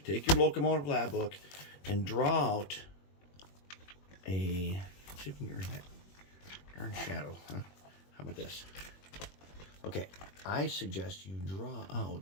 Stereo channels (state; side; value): late; right; 21 ms